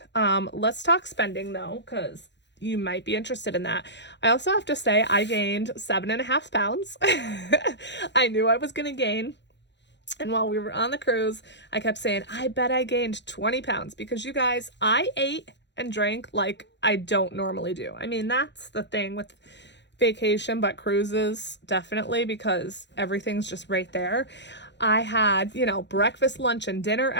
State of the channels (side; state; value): right; late; 0.52 ms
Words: Let's talk spending, though, because you might be interested in that. I also have to say I gained 7.5 pounds. I knew I was going to gain. And while we were on the cruise, I kept saying, I bet I gained 20 pounds, because you guys, I ate and drank like I don't normally do. I mean, that's the thing with vacation, but cruises definitely, because everything's just right there. I had, breakfast, lunch, and dinner